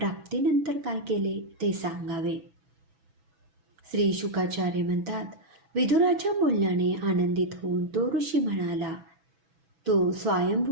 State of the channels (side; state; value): left; late; 6.1 ms